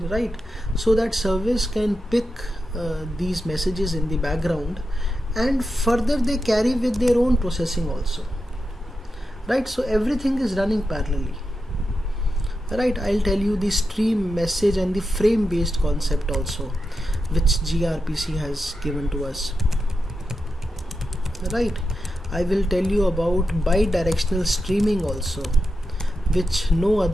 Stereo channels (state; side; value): normal; both; correlation 0.89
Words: So that service can pick these messages in the background, and further they carry with their own processing also, right? So everything is running parallelly, right? I'll tell you the stream, message and the frame based concept also, which gRPC has given to us, right? I will tell you about bidirectional streaming also, which no